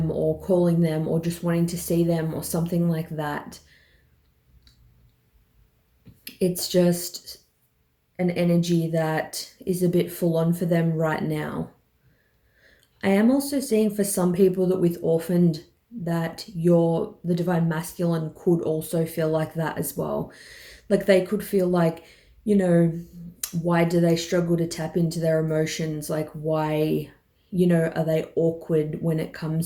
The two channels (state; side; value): identical; both; correlation 1.00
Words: or calling them or just wanting to see them or something like that, it's just an energy that is a bit full on for them right now. I am also seeing for some people that with orphaned, that the divine masculine could also feel like that as well. Like they could feel like, you know, why do they struggle to tap into their emotions? Like why, you know, are they awkward when it